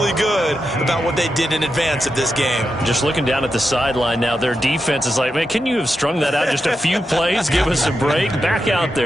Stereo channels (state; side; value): normal; both; correlation 0.87